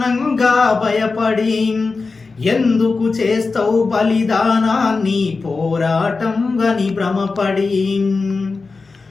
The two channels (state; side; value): quieter; right; 4.2 dB